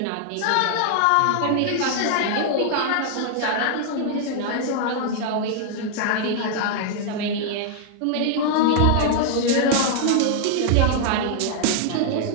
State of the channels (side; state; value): both; different; correlation -0.01